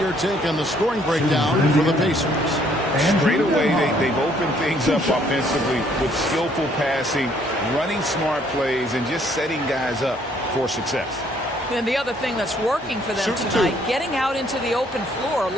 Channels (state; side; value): normal; both; correlation 0.65